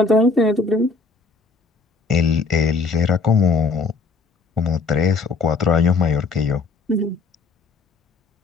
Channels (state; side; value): quieter; right; 4.2 dB